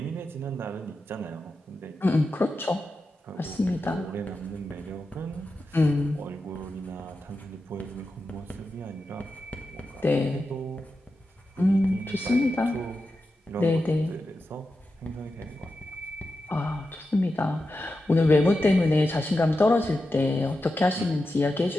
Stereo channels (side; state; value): both; normal; correlation 0.90